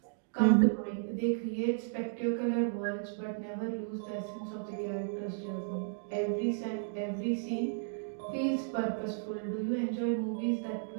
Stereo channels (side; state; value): left; silent; digital silence